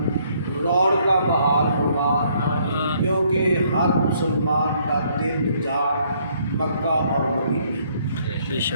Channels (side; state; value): both; inverted; correlation -0.67